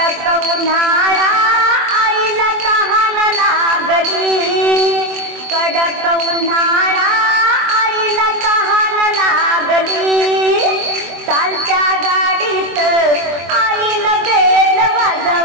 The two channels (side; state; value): left; late; 24 ms